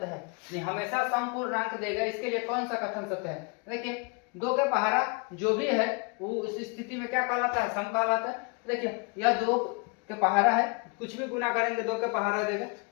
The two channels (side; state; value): right; quieter; 31.6 dB